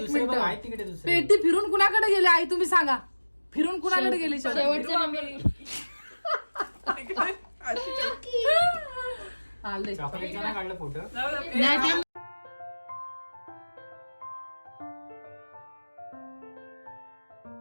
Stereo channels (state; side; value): inverted; both; correlation -1.00